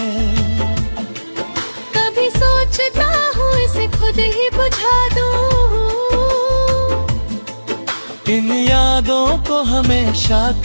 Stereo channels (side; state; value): both; inverted; correlation -1.00